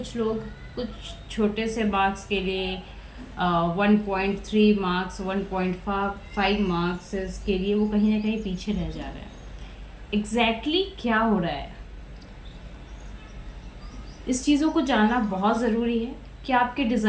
लोग कुछ छोटे से मार्क्स के लिए 1.3 मार्क्स 1.5 मार्क्स के लिए वो कहीं ना कहीं पीछे रह जा रहे हैं। एग्जैक्टली क्या हो रहा है, इस चीज़ों को जानना बहुत ज़रूरी है कि आपके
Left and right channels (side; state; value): both; identical; correlation 1.00